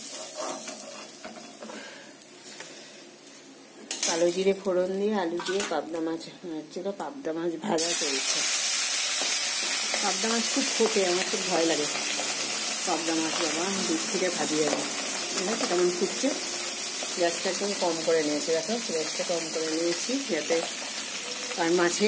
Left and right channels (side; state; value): both; identical; correlation 1.00